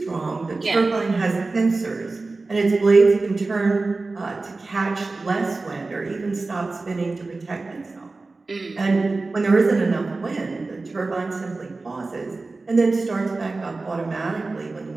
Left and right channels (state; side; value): quieter; left; 3.5 dB